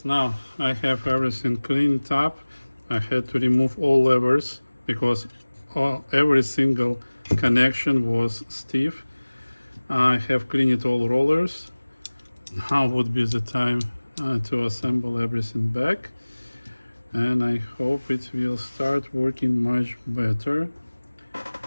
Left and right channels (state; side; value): inverted; both; correlation -1.00